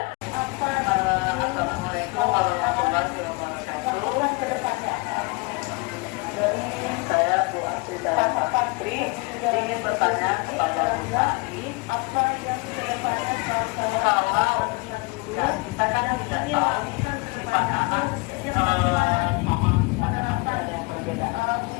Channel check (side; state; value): right; quieter; 27.4 dB